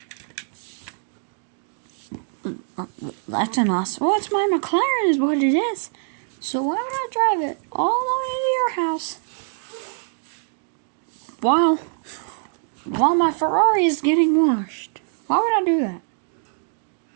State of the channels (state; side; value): silent; left; digital silence